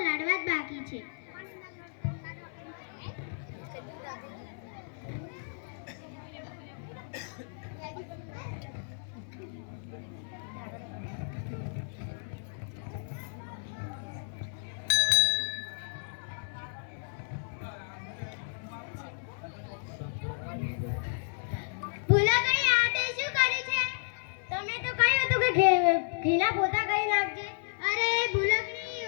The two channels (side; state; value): right; silent; 56 dB below the other